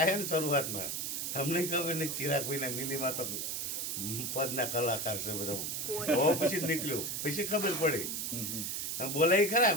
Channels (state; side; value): noise; right; hiss, 2 dB below the sound